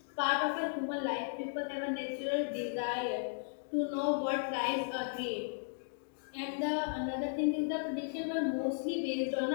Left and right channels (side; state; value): right; silent; digital silence